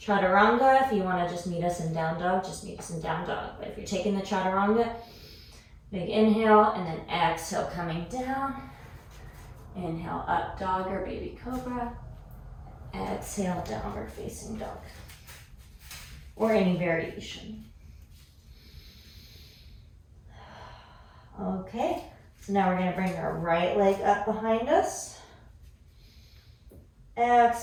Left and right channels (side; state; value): both; identical; correlation 1.00